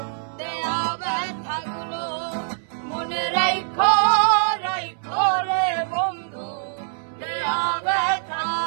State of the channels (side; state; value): left; silent; 63 dB below the other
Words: দেয়া ব্যথাগুলো মনে রাইখো রাইখো রে বন্ধু দেয়া